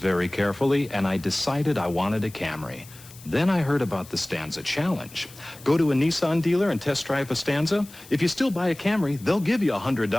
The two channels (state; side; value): noise; left; hiss, 20 dB below the sound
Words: carefully, and I decided I wanted a Camry. Then I heard about the Stanza Challenge. Go to a Nissan dealer and test drive a Stanza. If you still buy a Camry, they'll give you